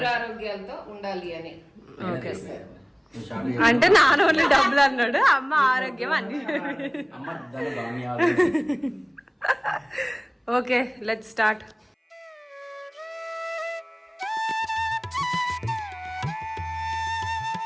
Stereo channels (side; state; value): both; identical; correlation 1.00